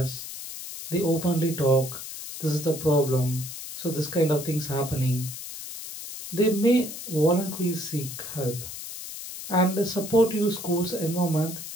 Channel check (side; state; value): left; noise; hiss, 10 dB below the sound